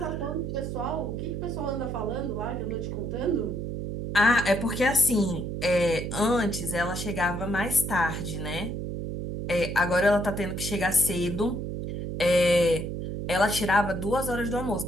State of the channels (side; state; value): right; noise; hum, 4 dB below the sound